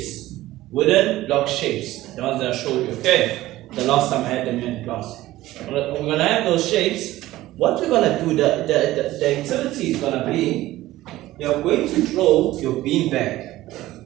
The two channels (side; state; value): left; quieter; 16.2 dB